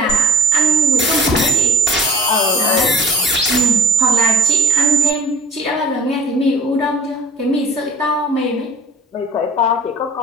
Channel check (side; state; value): both; normal; correlation 0.43